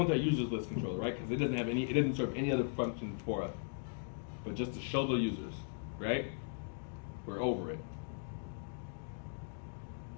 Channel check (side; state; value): right; silent; digital silence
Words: our users list controller, right? Because it doesn't have any, it doesn't serve any other function for us, but just to show the users, right? We're over it.